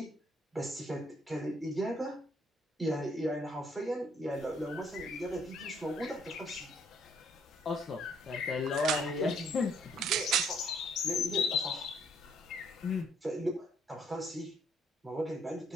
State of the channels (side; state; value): both; normal; correlation 0.66